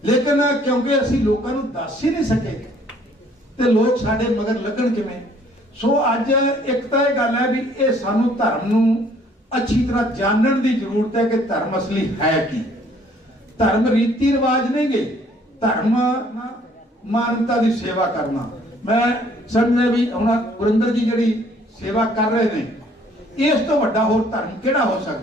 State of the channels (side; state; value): both; normal; correlation 0.60